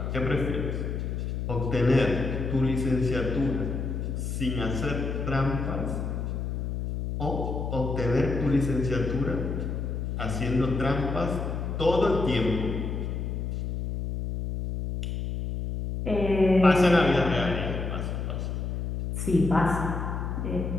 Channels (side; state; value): left; noise; hum, 3 dB below the sound